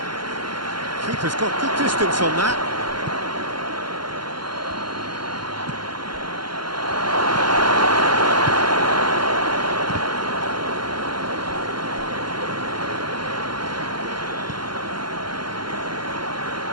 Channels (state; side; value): late; left; 0.72 ms